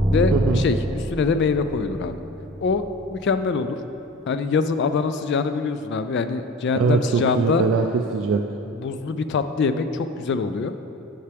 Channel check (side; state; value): both; normal; correlation 0.37